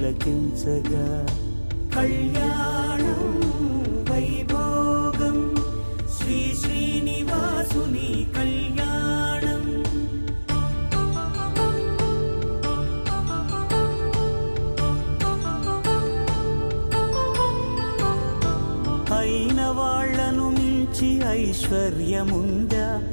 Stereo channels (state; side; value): inverted; both; correlation -1.00